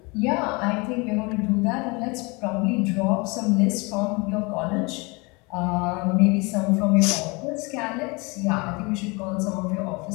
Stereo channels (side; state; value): right; quieter; 27.6 dB